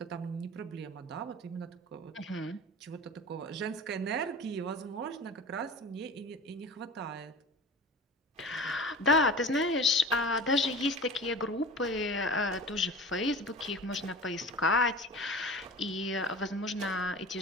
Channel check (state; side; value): normal; both; correlation 0.36